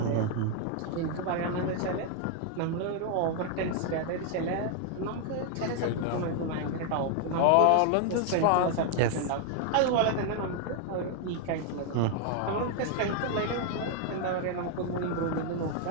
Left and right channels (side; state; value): both; different; correlation 0.00